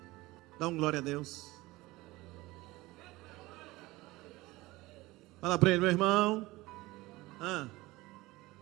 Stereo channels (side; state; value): left; quieter; 20.0 dB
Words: dá um glória a Deus. Fala para ele: meu irmão,